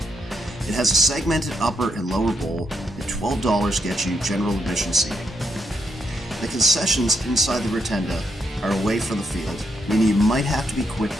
It has a segmented upper and lower bowl, and $12 gets you general admission seating. The concessions inside the rotunda are away from the field, meaning you might have to be quick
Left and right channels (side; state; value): both; normal; correlation 0.79